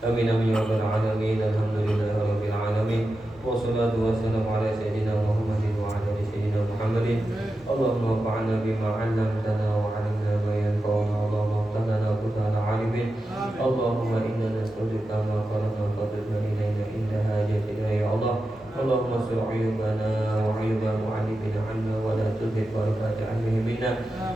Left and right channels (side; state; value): both; normal; correlation 0.91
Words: Amin amin ya rabbal alamin. Alhamdulillahirabbil alamin. Wassalatu wassalamu ala sayyidina Muhammadin wa ala ali sayyidina Muhammadin. Allahumma fa'alna bima 'allamtana wa 'allimna ma yanfa'una. Allahumma ighfir lana alimin. Allahumma inna nas'aluka ma qara'na fadlna ilayna inda hajatina ya Allah. Allahumma sur uyubana wa uyuba mu'allimina 'anna wa la tuzigh barakata 'ilmina.